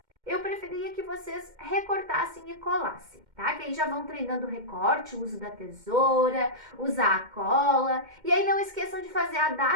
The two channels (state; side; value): late; left; 2.1 ms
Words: eu preferia que vocês recortassem e colassem, tá? Que aí já vão treinando o recorte, o uso da tesoura, usar a cola. E aí não esqueçam de fazer a